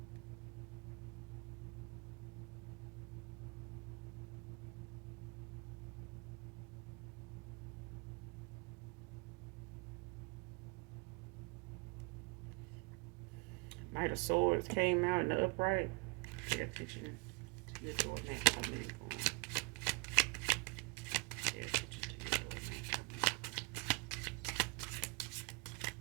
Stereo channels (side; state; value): left; quieter; 27.9 dB